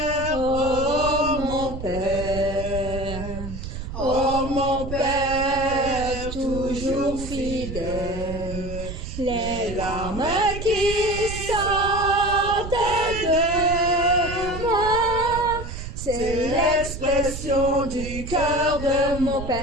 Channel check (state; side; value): noise; right; rumble, 8 dB below the sound